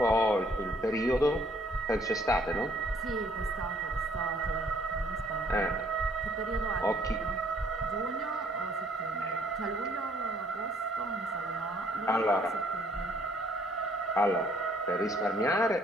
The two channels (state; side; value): normal; both; correlation 0.64